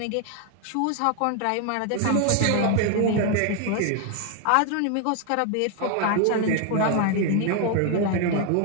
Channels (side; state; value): both; different; correlation 0.00